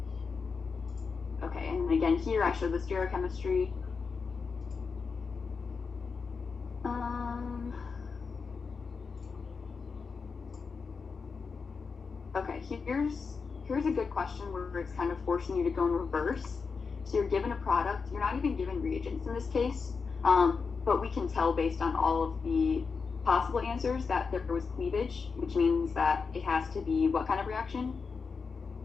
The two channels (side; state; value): right; quieter; 5.1 dB